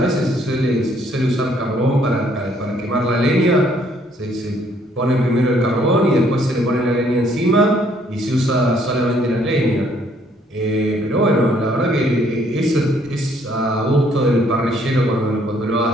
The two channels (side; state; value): both; normal; correlation 0.65